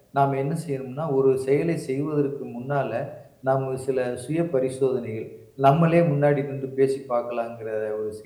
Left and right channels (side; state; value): both; identical; correlation 1.00